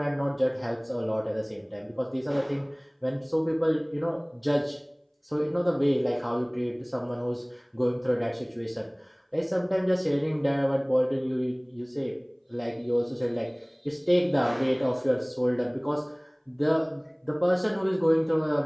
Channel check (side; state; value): both; identical; correlation 1.00